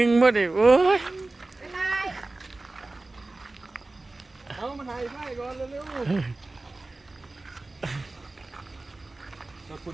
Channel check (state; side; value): quieter; left; 3.1 dB